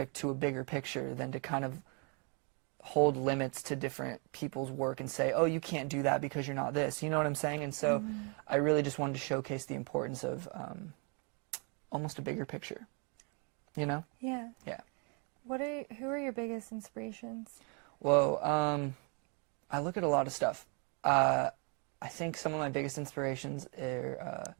to a bigger picture than to kind of hold limits to different people's work and say, oh, you can't do that because you're not this. You know what I'm saying? And so I really just wanted to showcase the importance of almost a bigger picture, Yeah. Yeah. Who are your biggest inspirations? Well, I look at a lot of stuff. I think some of my biggest inspirations are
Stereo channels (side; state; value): left; quieter; 35.8 dB